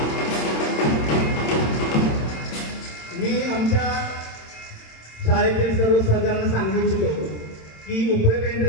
मी आमच्या शाळेतील सर्व सहकार्यांना सांगू इच्छितो की उपरे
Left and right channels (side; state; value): right; late; 27 ms